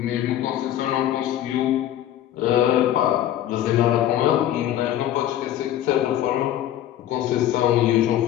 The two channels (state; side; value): quieter; right; 12.0 dB